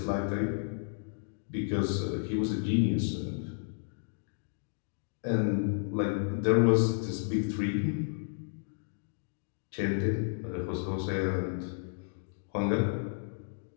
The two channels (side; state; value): right; silent; digital silence